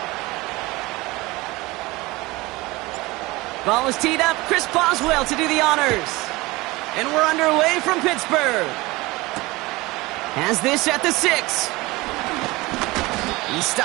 Ball is teed up. Chris Boswell to do the honors. And we're underway from Pittsburgh. Has this at the 6. He's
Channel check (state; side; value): quieter; left; 21.5 dB